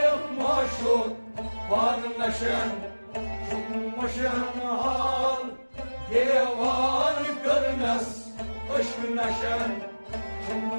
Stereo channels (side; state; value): both; inverted; correlation -1.00